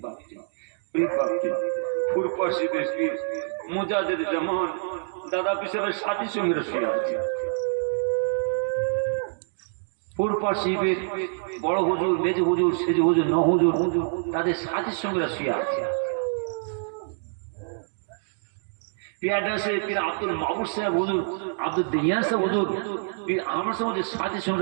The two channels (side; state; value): left; silent; digital silence